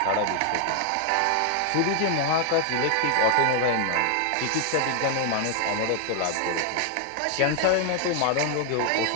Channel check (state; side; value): different; both; correlation 0.00